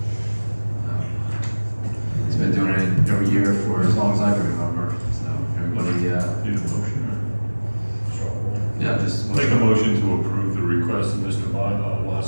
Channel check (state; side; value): inverted; both; correlation -1.00